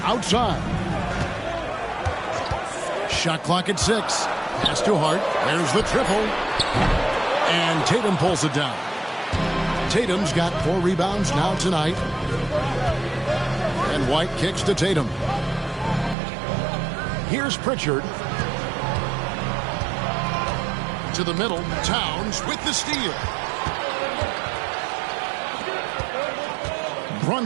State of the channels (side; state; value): left; drops out; at 16.2 s